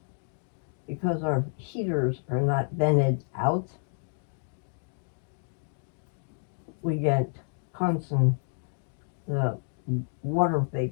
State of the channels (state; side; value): silent; right; digital silence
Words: because our heaters are not vented out, we get constant water